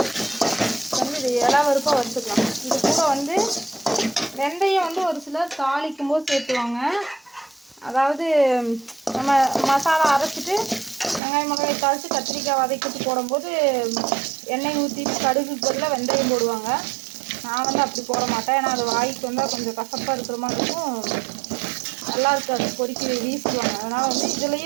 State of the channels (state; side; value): drops out; left; at 11.2 s